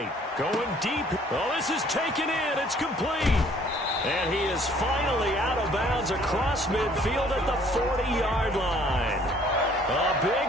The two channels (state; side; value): normal; both; correlation 0.58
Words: Going deep. Oh, this is taken in. It's complete. And he is finally out of bounds across midfield at the 40-yard line. A